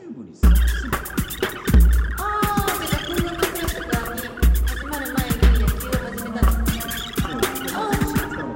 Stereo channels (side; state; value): both; identical; correlation 1.00